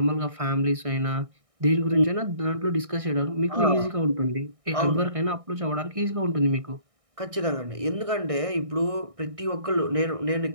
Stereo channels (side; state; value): left; late; 1.6 ms